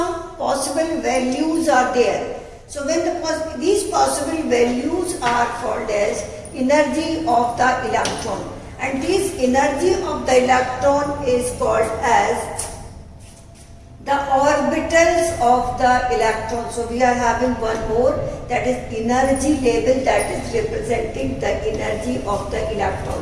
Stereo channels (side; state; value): both; identical; correlation 1.00